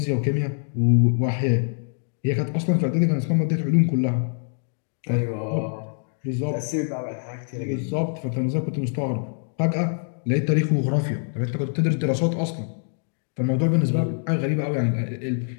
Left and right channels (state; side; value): silent; right; digital silence